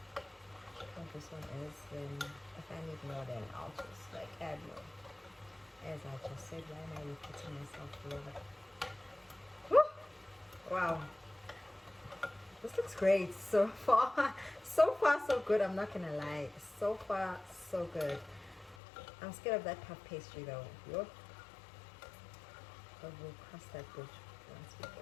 how this one is. Then if I need more, then I'll just like add more. As I just said, why am I repeating myself flavor? Wow, this looks great so far. So far so good, I'm not gonna lie. So far so good. I'm scared of that puff pastry though. But we'll cross that bridge once we get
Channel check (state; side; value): drops out; right; at 18.8 s